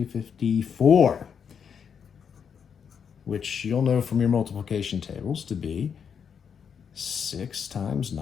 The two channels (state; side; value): quieter; right; 7.1 dB